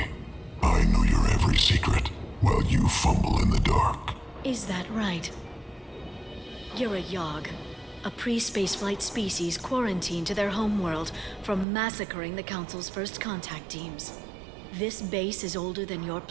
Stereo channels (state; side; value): drops out; left; at 11.7 s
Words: I know your every secret, while you fumble in the dark. Is that right? You're a Yogg, a pre-spaceflight species quarantined to their homeworld from massacring the Council's first contact teams. This base is older than your